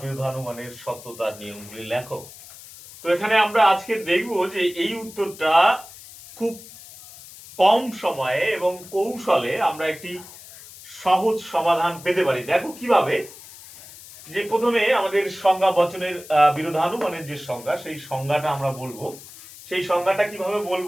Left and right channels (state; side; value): noise; left; hiss, 18 dB below the sound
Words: বিরোধানুমানের সত্যতার নিয়মগুলি লেখো। তো এখানে আমরা আজকে দেখব যে এই উত্তরটা খুব কম সময়ে এবং কৌশলে আমরা একটি সহজ সমাধান পেতে পারি। দেখো কিভাবে, যে প্রথমে আমাদের সংজ্ঞা বচনের বিরোধানুমানের যে সংজ্ঞা সেই সংজ্ঞাটা আমরা বলবো। সেই সংজ্ঞাটা কিভাবে